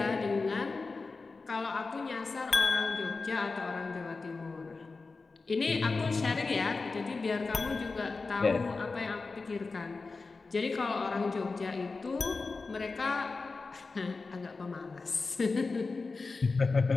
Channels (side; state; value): right; quieter; 4.0 dB